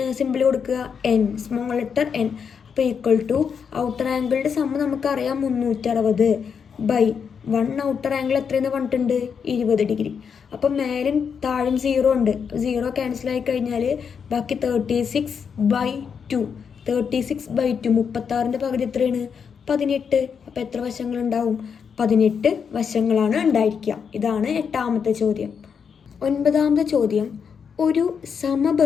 സിമ്പിൾ കൊടുക്കുക? N, small letter N. അപ്പോൾ ഈക്വൽ ടു ഔട്ടർ ആംഗിളുടെ സമ്മ് നമുക്കറിയാം 360 ബൈ 1 ഔട്ടർ ആംഗിൾ എത്രയെന്ന് പറഞ്ഞിട്ടുണ്ട്? 20 ഡിഗ്രി. അപ്പം മേലും താഴും 0 ഉണ്ട്. 0 ക്യാൻസൽ ആയി കഴിഞ്ഞാൽ ബാക്കി 36/2. 36/2 36ൻ്റെ പകുതി എത്രയാണ്? 18. അപ്പോൾ എത്ര വശങ്ങളുണ്ടാവും? 18 വശങ്ങളാണ് ഉണ്ടായിരിക്കുക. ഇതാണ് 8ാമത്തെ ചോദ്യം. 9ാമത്തെ ചോദ്യം, ഒരു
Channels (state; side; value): quieter; right; 6.6 dB